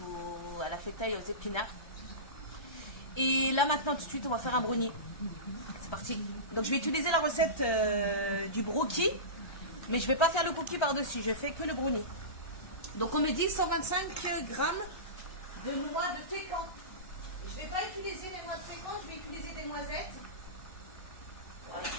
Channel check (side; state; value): right; late; 1.3 ms